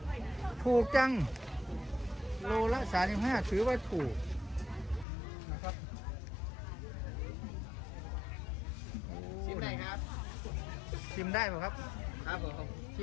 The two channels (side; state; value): right; drops out; at 5.1 s